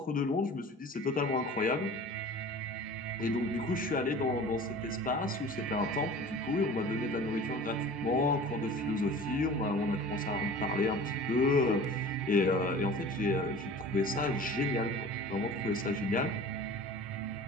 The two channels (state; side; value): normal; both; correlation 0.41